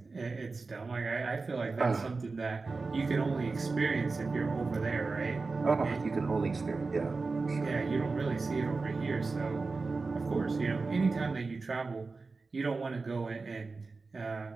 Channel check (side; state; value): left; quieter; 4.0 dB